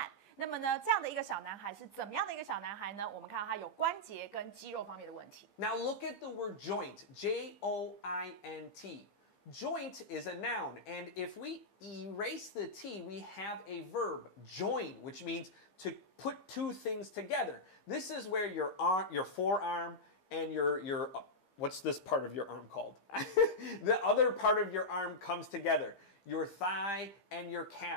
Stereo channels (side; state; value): right; late; 15 ms